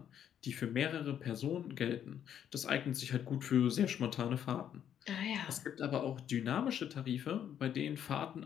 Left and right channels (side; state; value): right; quieter; 9.5 dB